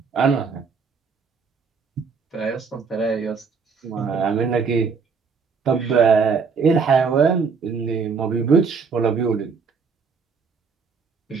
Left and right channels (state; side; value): quieter; left; 5.4 dB